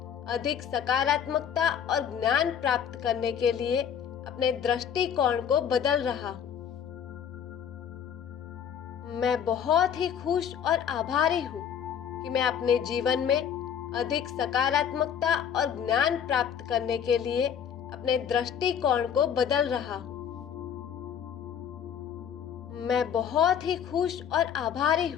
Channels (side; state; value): right; quieter; 8.3 dB